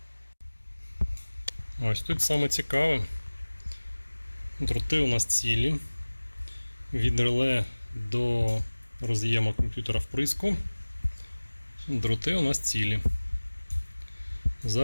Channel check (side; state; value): both; inverted; correlation -1.00